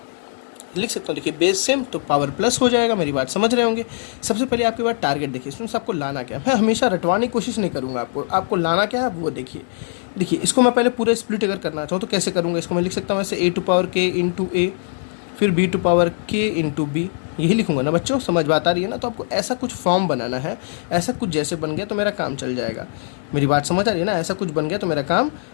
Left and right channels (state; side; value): silent; right; digital silence